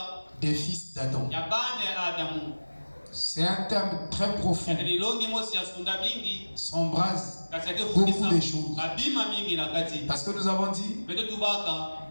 des fils d'Adam. C'est un thème très profond. S'embrase beaucoup de choses. Parce que nous avons dit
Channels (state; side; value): inverted; both; correlation -1.00